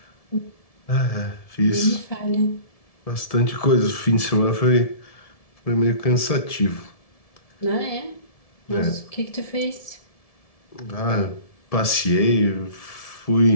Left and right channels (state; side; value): late; right; 1.7 ms